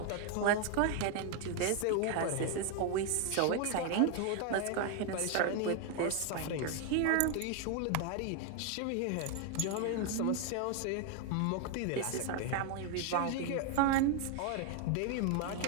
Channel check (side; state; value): both; different; correlation 0.01